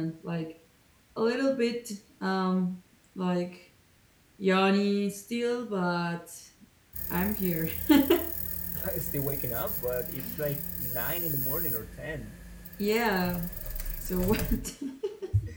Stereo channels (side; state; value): both; identical; correlation 1.00